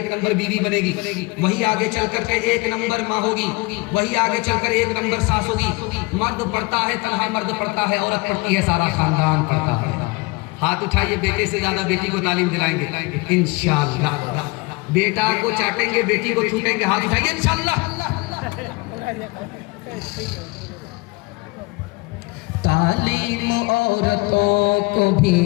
नंबर बीवी बनेगी, वही आगे चल करके 1 नंबर माँ होगी, वही आगे चलकर 1 नंबर सास होगी। मर्द पढ़ता है, तन्हा मर्द पढ़ता है, औरत पढ़ती है, सारा खानदान पढ़ता है। हाथ उठाइए, बेटे से ज्यादा बेटी को तालीम दिलाएंगे इंशाअल्लाह। बेटा को चाटेंगे, बेटी को छूटेंगे, हाथ उठाइए इंशाअल्लाह। तालीम औरतों को भी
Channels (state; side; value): quieter; right; 24.9 dB